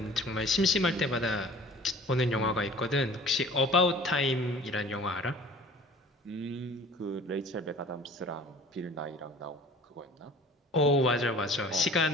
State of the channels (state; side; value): normal; both; correlation 0.46